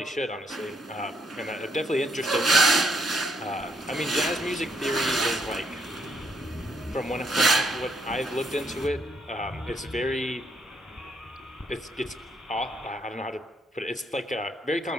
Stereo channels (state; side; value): normal; both; correlation 0.73